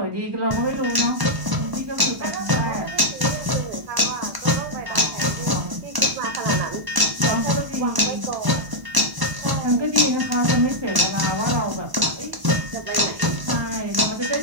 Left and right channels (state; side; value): late; left; 1.0 ms